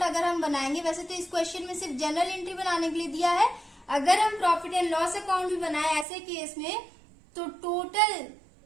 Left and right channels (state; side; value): drops out; left; at 6.1 s